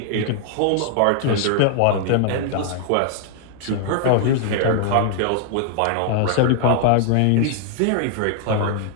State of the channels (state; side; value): different; both; correlation 0.00